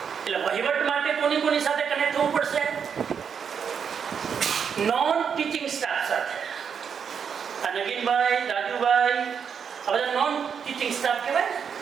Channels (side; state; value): left; quieter; 7.0 dB